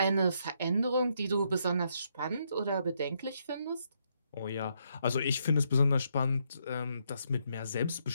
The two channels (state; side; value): inverted; both; correlation -0.75